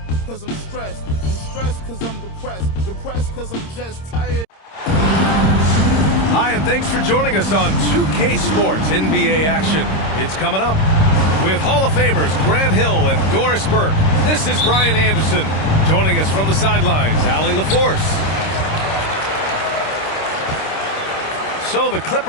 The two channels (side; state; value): right; late; 26 ms